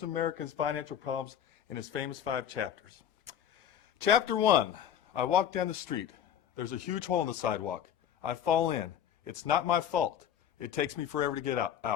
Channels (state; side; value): quieter; right; 9.7 dB